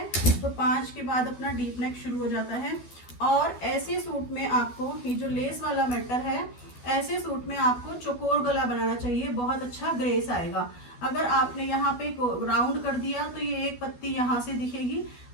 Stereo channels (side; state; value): right; late; 12 ms